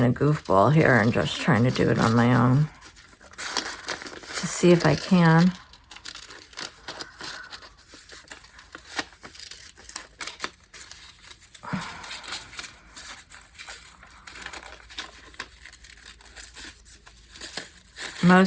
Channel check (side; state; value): both; identical; correlation 1.00